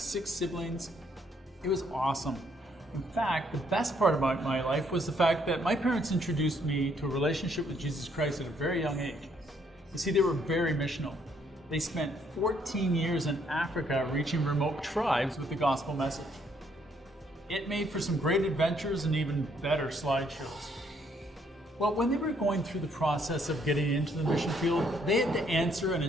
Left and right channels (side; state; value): both; normal; correlation 0.69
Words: 6 siblings. It was awesome. In fact, the best part about my life was the fact that my parents introduced me to a relationship with Jesus Christ at a very young age. You see, they were very missional. They spent 14 years in Africa reaching remote tribes with the gospel message. It made for some great adventures and even better slideshows. Well, when they were going through the process of getting into the mission field, they had to answer and